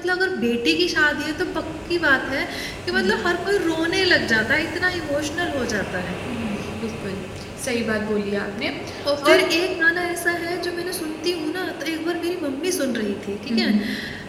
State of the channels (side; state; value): both; identical; correlation 1.00